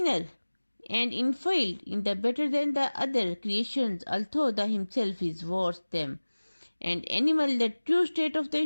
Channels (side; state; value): both; inverted; correlation -1.00